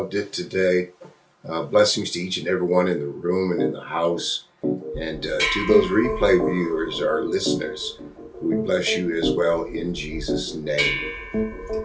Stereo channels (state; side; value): identical; both; correlation 1.00